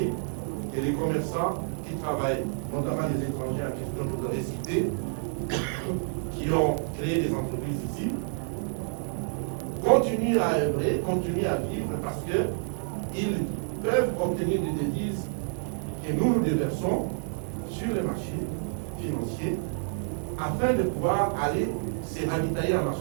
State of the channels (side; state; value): left; silent; digital silence